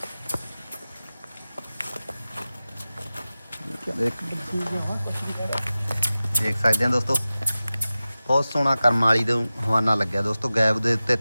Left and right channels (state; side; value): inverted; both; correlation -0.96